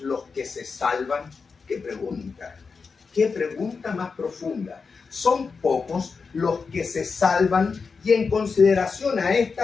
los que se salvan? ¿Qué pregunta? ¿Qué pregunta más profunda? Son pocos los que se salvan, y en consideración a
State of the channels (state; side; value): quieter; right; 5.0 dB